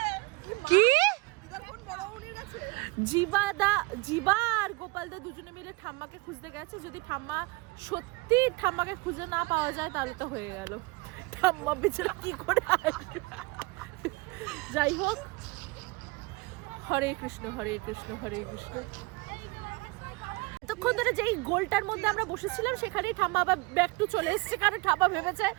কি জিবা আর গোপালদা দুজনে মিলে ঠাম্মাকে খুঁজতে গেছে। যদি ঠাম্মা সত্যি ঠাম্মাকে খুঁজে না পাওয়া যায় তাহলে তো হয়ে গেল, ঠাম্মা বেচারা কি করে আসবে। যাই হোক, হরে কৃষ্ণ হরে কৃষ্ণ হরে কৃষ্ণ। এতক্ষণ ধরে যেই গোলটার মধ্যে আমরা বসেছিলাম সেখানেই ঠাম্মা আবার ব্যাক টু চলে এসেছে, কারণ ঠাম্মা ভেবেছে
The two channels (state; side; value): quieter; left; 25.0 dB